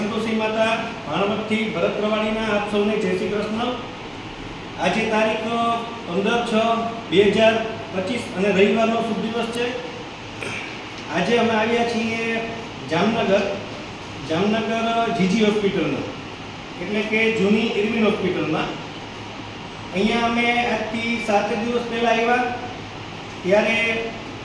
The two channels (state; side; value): identical; both; correlation 1.00